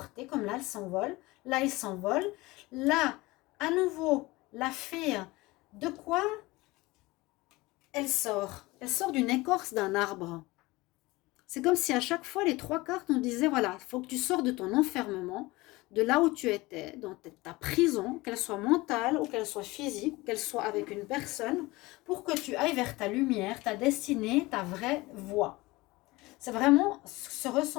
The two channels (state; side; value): quieter; right; 21.2 dB